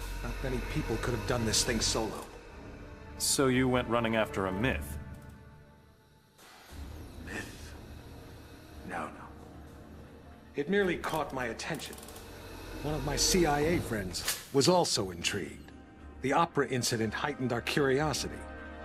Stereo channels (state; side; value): identical; both; correlation 1.00